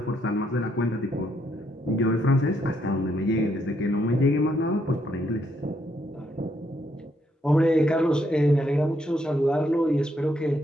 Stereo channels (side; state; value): both; normal; correlation 0.75